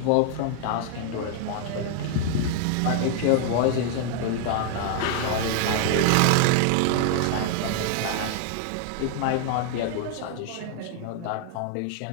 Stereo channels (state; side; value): different; both; correlation 0.00